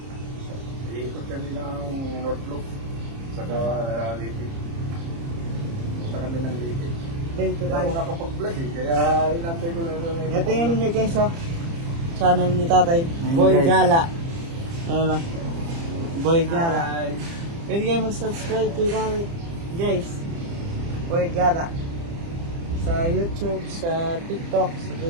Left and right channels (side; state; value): left; late; 30 ms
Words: Iikot kami ng North Loop. Saka Liti. Punta kami ng Liti. Dito Hindi tayo. ako nakapag-vlog eh. Kaya inantay ko na ito. Ito yun niya guys, oh. Channel ni tatay. Ayun, Boy guys. Gala. Ano lang. Boy Gala. Hi. Pwede kayo mag-subscribe kay tatay. Guys. Boy Gala. Sa YouTube, sa TikTok, sa